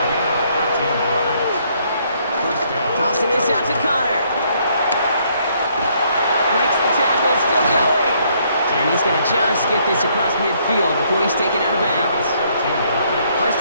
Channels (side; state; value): both; inverted; correlation -0.68